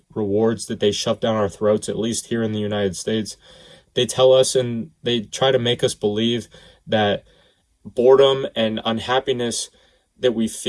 rewards that they shove down our throats, at least here in the United States. They tell us and they try to make us believe that boredom and unhappiness that we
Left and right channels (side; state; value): both; identical; correlation 1.00